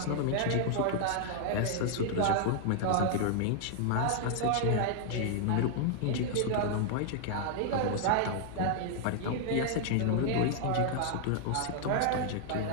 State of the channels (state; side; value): different; both; correlation 0.00